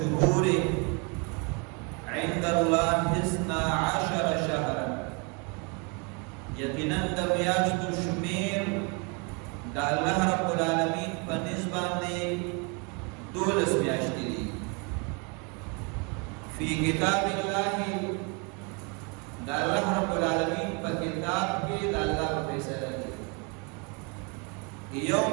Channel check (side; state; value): left; quieter; 32.0 dB